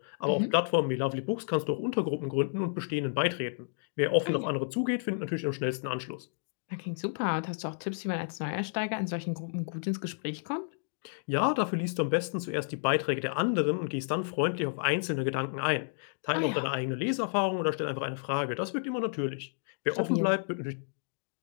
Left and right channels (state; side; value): silent; right; digital silence